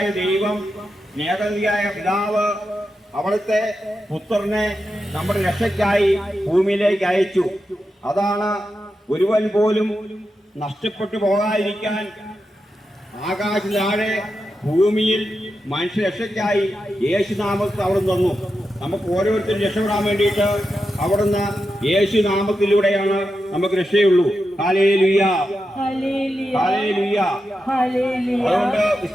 ദൈവം, സ്നേഹനിധിയായ പിതാവ് അവിടുത്തെ പുത്രനെ നമ്മുടെ രക്ഷയ്ക്കായി ഭൂമിയിലേക്ക് അയച്ചു. അതാണ് ഒരുവൻ പോലും നഷ്ടപ്പെട്ടു പോകാതിരിക്കാൻ ആകാശ താഴെ ഭൂമിയിൽ മനുഷ്യ രക്ഷയ്ക്കായി യേശുനാമത്തിൽ അവിടുന്ന് തന്നു. നമുക്ക് ഓരോരുത്തരും രക്ഷപ്പെടാൻ വേണ്ടിയിട്ട് അവിടുന്ന് യേശുനാമത്തിലൂടെയാണ് നമുക്ക് രക്ഷയുള്ളൂ. Hallelujah, hallelujah. അതുകൊണ്ട്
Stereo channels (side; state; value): both; normal; correlation 0.88